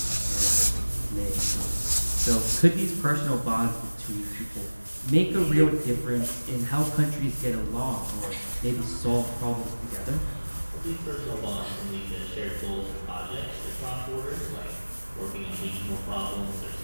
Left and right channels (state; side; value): inverted; both; correlation -1.00